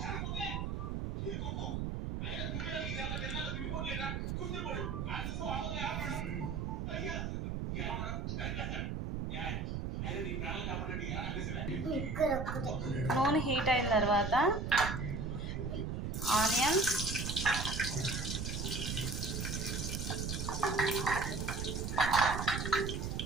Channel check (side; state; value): right; noise; rumble, 2 dB below the sound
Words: నూనె హీట్ అయిన తర్వాత ఆనియన్,